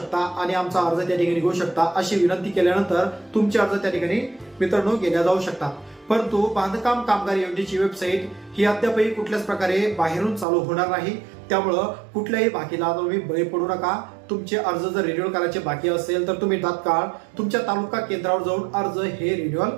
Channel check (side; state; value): left; drops out; at 10.5 s